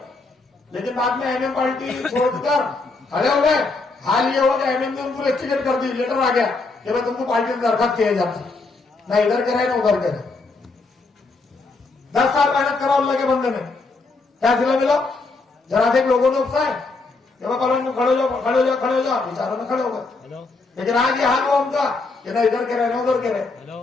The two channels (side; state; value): right; quieter; 3.7 dB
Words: लेकिन बाद में एमएम पार्टी छोड़कर खड़े हो गए। हाल ये हो गया एमएम ने उनको टिकट कर दी, लेटर आ गया कि भाई तुमको पार्टी में दरखास्त किया जाता, ना इधर के रहे ना उधर के रहे। 10 साल मेहनत करा अल्लाह के बंदे ने, क्या सिला मिला? जरा से लोगों ने उकसाए कि भाई कॉलोनी में खड़े हो जाओ, खड़े हो जाओ, खड़े हो जाओ, बेचारों में खड़े हो गए। लेकिन आज ये हाल हुआ उनका कि ना इधर के रहे ना उधर के